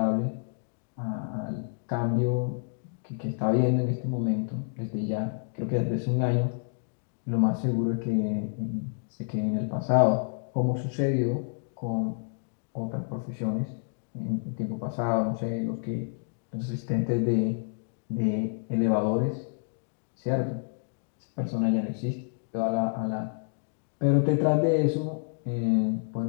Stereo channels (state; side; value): silent; right; digital silence